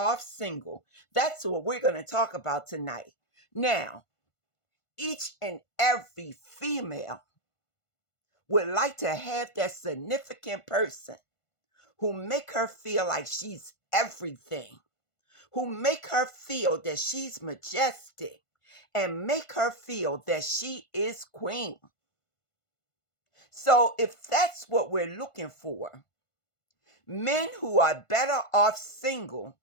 single. That's what we're going to talk about tonight. Now, each and every female would like to have that significant person who make her feel like she's everything, who make her feel that she's majestic and make her feel that she is queen. So if that's what we're looking for, men who are better off single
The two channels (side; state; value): right; late; 1.5 ms